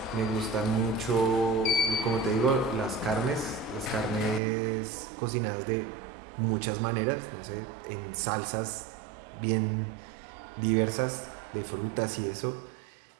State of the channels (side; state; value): left; drops out; at 4.4 s